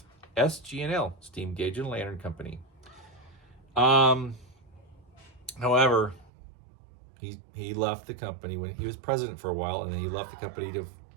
SG&L, Steam Gauge and Lantern Company. However, he left the company when he was president for a while, and then he left the company to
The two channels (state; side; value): drops out; left; at 6.3 s